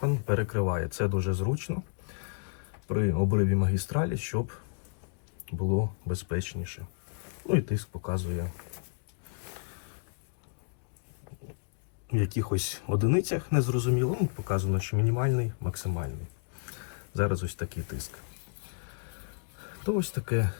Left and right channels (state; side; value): silent; right; digital silence